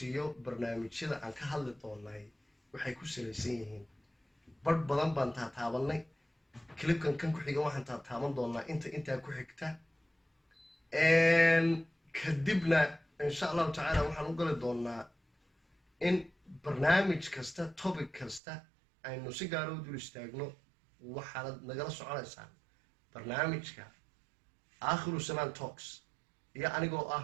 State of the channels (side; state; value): left; drops out; at 18.4 s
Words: barnaamijyada aan ka hadli doonay waxay ku salaysan yihiin badh badan baan taataabanay clipkan kan ku xiga waxaan taataaban doonaa intaa ku xigta kadibna insha allahu tacaala waxaan u gali doonaa in barnaamij kasta topic kasta aynu si gaar u dul istaagno waxaad nagala soconaysaan barnaamijka Aakhiru Samaan Talks iyo anigoo ah